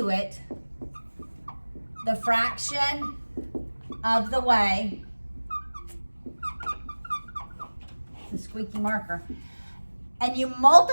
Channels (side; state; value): both; inverted; correlation -1.00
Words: it the fraction of the way, the squeaky marker, and you